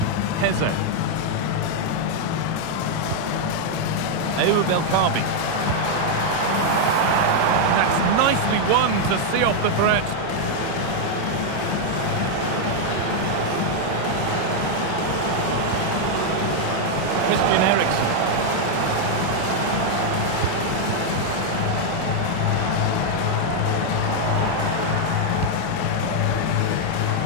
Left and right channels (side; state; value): both; different; correlation 0.00